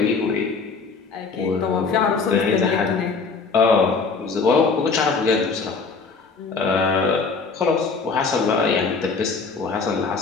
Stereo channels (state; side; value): quieter; right; 4.7 dB